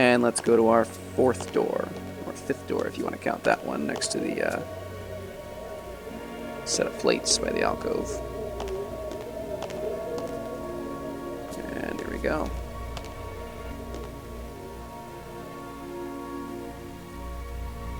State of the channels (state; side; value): identical; both; correlation 1.00